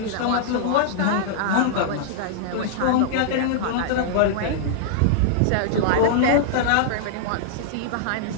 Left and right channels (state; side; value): different; both; correlation -0.01